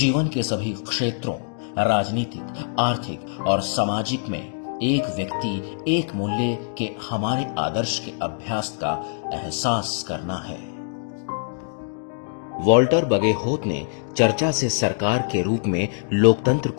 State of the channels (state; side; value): silent; right; digital silence